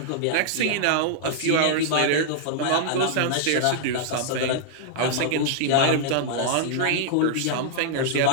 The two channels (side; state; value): both; different; correlation -0.01